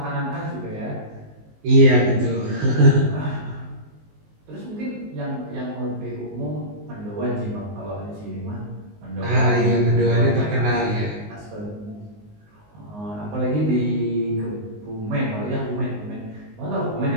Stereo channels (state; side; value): late; left; 19 ms